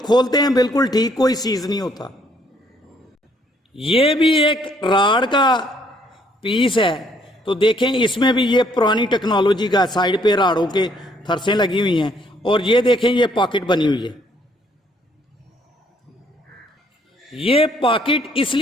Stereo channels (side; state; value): both; normal; correlation 0.66